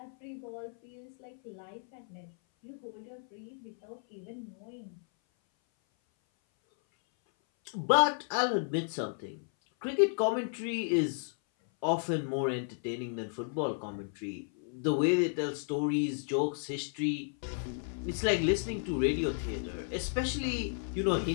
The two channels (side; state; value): right; silent; 56 dB below the other